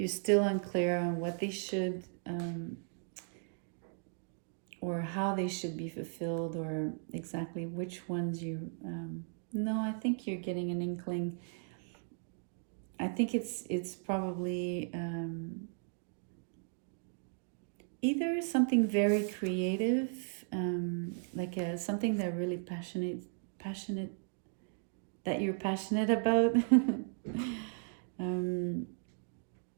still unclear on what they should or how they should be fulfilled, or exactly which ones you no, I think you're getting an inkling. I think it's probably either something very creative, like something that really passionate that you're passionate about,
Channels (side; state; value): left; silent; 54 dB below the other